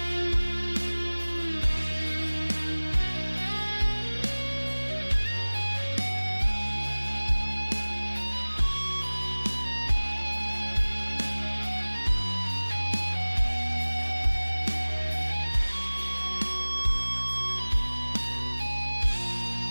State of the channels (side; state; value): both; inverted; correlation -1.00